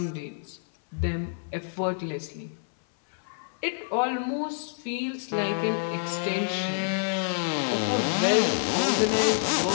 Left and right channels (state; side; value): silent; right; 60 dB below the other